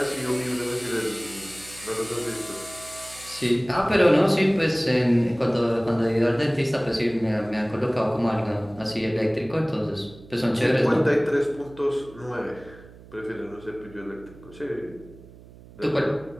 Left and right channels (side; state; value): right; noise; hum, 21 dB below the sound